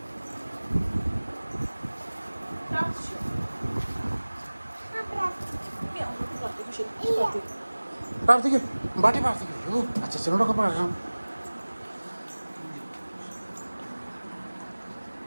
പ്രാർത്ഥിക്കും, ബാട്ടി പ്രാർത്ഥിക്കും. അച്ഛനോടൊക്കെ പറയണം.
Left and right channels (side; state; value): both; inverted; correlation -1.00